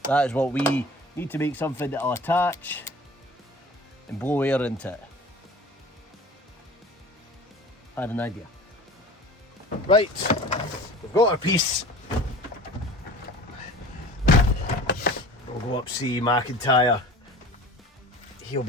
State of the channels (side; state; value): both; normal; correlation 0.42